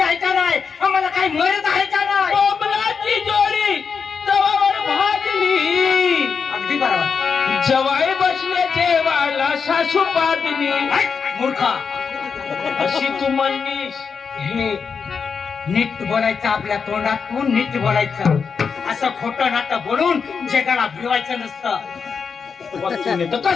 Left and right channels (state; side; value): quieter; right; 5.9 dB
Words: आहे का नाही, आम्हाला काही मर्यादा आहे का नाही. कोंबलाची जोडी तवावर भाजली अगदी बरोबर. जवाई बसले जेवायला सासू पादली मूर्खा अशी तू म्हणलीस. हे नीट बोलायचं, आपल्या तोंडातून नीट बोलायचं. असं खोटं नाटं बोलून जगाला भिवायचं नसतं. तर